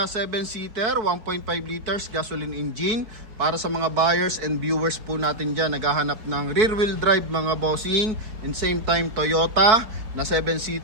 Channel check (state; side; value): late; left; 4.5 ms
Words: 7-seater, 1.5 liters gasoline engine. Para sa mga buyers and viewers po natin dyan, naghahanap ng rear wheel drive mga bossing, and same time Toyota na